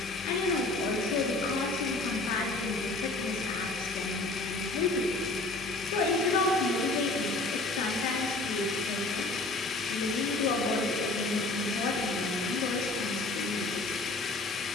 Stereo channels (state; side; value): quieter; right; 3.1 dB